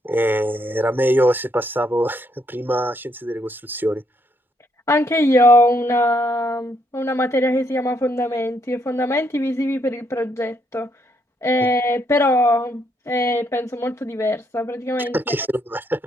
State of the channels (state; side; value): normal; both; correlation 0.74